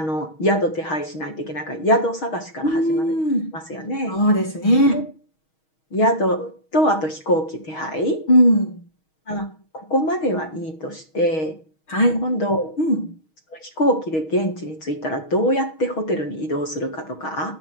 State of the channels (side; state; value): right; late; 6.3 ms